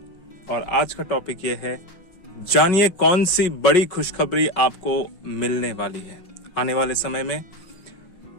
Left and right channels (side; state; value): right; late; 5.3 ms